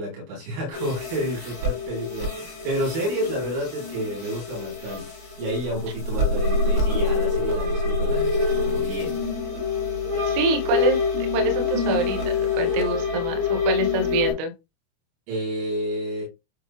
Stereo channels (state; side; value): late; left; 24 ms